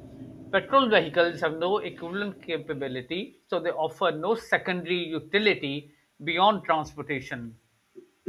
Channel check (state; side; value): identical; both; correlation 1.00